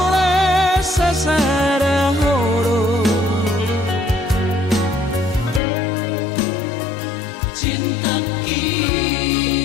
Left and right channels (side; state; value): right; drops out; at 5.6 s